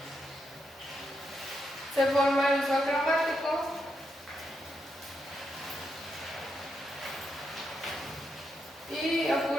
Se forma el uso cromático. Y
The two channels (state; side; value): normal; both; correlation 0.82